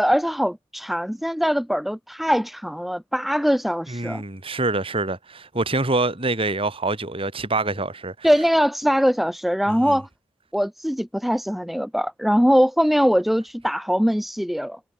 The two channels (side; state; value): both; normal; correlation 0.88